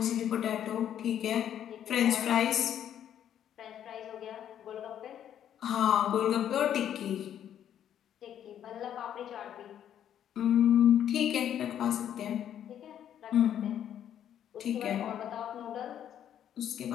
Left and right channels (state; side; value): quieter; right; 10.1 dB